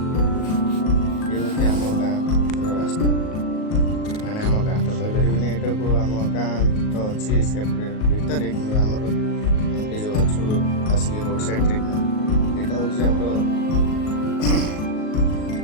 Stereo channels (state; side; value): late; right; 38 ms